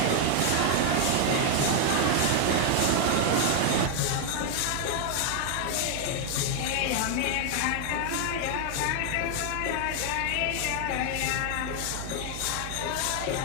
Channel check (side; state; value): both; different; correlation 0.00